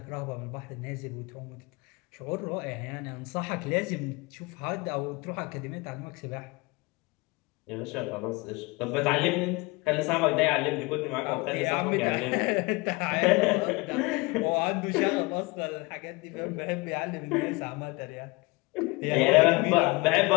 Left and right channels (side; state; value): right; quieter; 25.5 dB